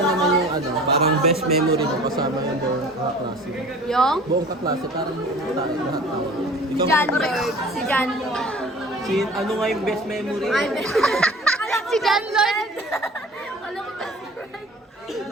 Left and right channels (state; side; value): normal; both; correlation 0.44